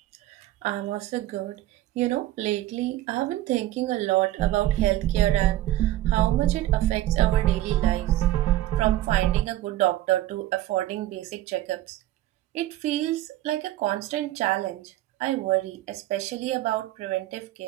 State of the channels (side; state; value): left; quieter; 14.6 dB